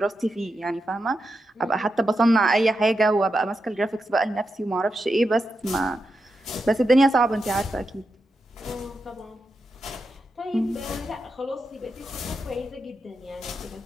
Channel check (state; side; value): normal; both; correlation 0.87